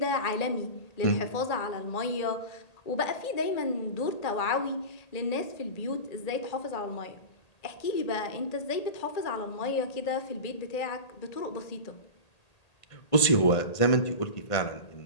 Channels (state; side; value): late; right; 1.8 ms